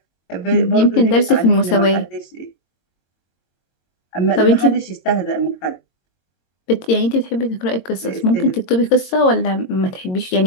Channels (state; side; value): late; right; 22 ms